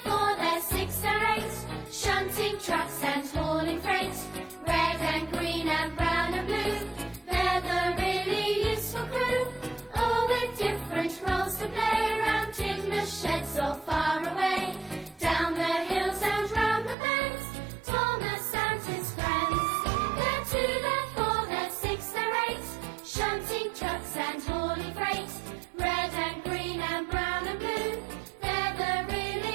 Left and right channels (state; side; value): drops out; left; at 16.9 s